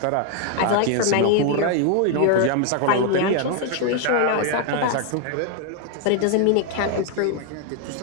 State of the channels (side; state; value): both; different; correlation 0.00